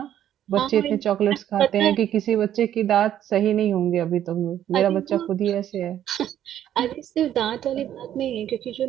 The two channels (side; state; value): left; quieter; 11.0 dB